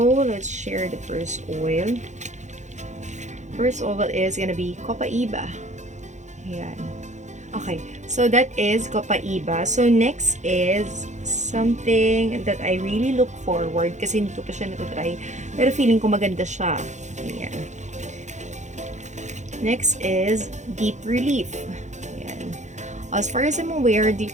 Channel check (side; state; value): left; late; 0.34 ms